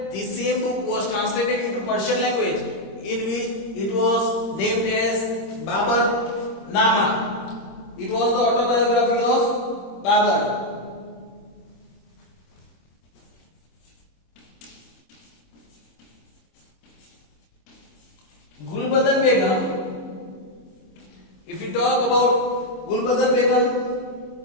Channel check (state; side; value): late; right; 26 ms